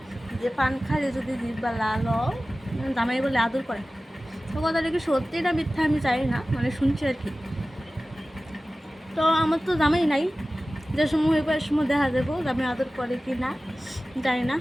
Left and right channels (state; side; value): normal; both; correlation 0.96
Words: যে পান খাইলে যদি জিব্বা লাল হয় জামাই বলে আদর করে। তো কথাটা কি সত্যি না মিথ্যা আমি জানি না, মানে শুনছি আর কি। তো আমার তো জামাই নাই, যে সময় হইব এর সময় দেখা যাবো জামাই আদর করে কি না, জানি না